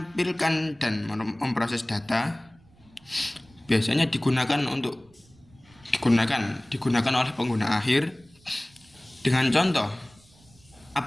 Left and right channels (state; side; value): noise; right; rumble, 28 dB below the sound